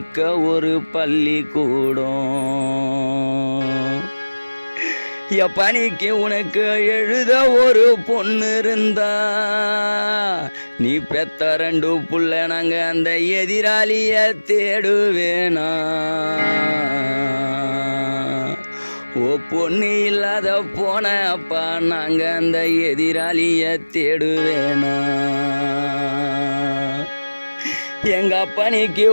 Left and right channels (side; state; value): both; inverted; correlation -1.00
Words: ஒரு பள்ளிக்கூடம். என் பணிக்கு உனக்கு எழுத ஒரு பொண்ணு இருந்தா, நீ பெத்த 2 புள்ள நாங்க அந்த எதிராளிய தேடுவேனா. ஓ பொண்ணு இல்லாத போன அப்பா நாங்க அந்த எதிராளிய தேடுவேனா. எங்க பணிக்கு